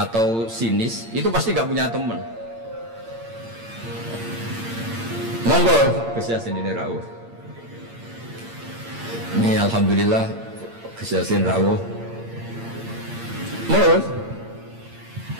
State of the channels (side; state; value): left; late; 8.8 ms